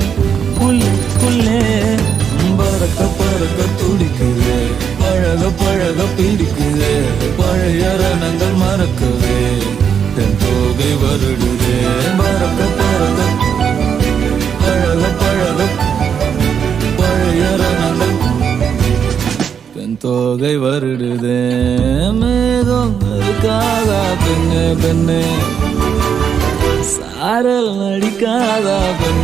உள்ளுக்குள்ளே. பறக்க பறக்க துடிக்குது, பழக பழக பிடிக்குது, பழைய ரணங்கள் மறக்கவே தென் தோகை வருடுதே. பறக்க பறக்க பழக பழக பழைய ரணங்கள் தென் தோகை வருடுதே. மேகம் இருக்காதா பெண்ணே பெண்ணே, சாரல் நடிக்காதா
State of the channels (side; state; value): left; quieter; 7.5 dB